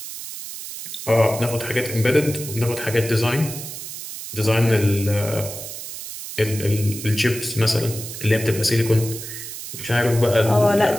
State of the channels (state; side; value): noise; right; hiss, 10 dB below the sound